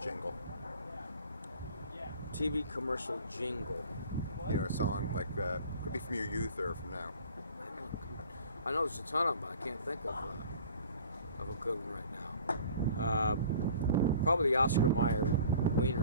TV commercial jingle. You know, a song like could be from your youth or from now. I know there's a ton of them, but I can't think of a good one right now. Probably the Oscar Mayer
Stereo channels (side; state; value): both; inverted; correlation -0.47